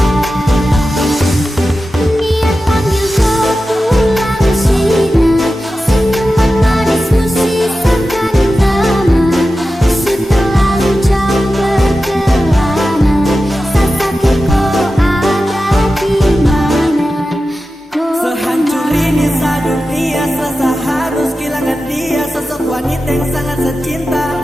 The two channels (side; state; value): both; normal; correlation 0.93